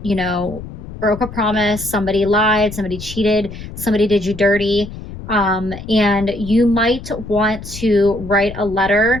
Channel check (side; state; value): left; noise; rumble, 12 dB below the sound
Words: broke a promise, somebody lied, somebody cheated, somebody did you dirty. And you might want to write a